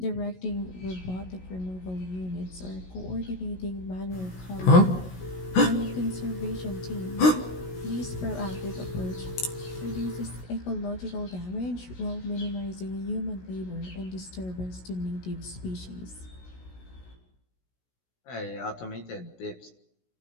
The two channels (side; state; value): right; late; 16 ms